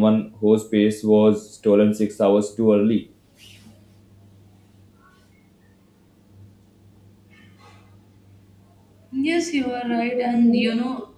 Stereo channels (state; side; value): identical; both; correlation 1.00